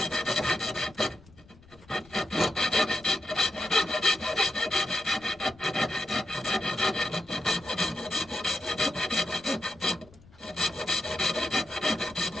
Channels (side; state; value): left; noise; rumble, 25 dB below the sound